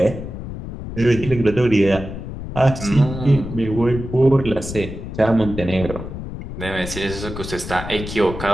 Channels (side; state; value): left; noise; rumble, 9 dB below the sound